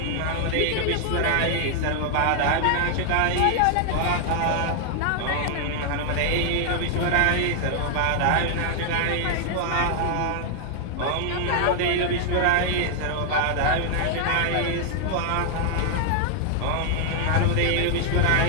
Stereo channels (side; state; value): both; different; correlation 0.00